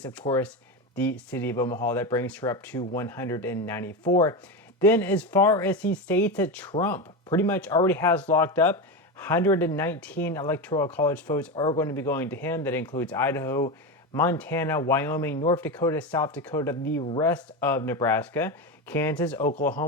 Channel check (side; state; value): both; normal; correlation 0.17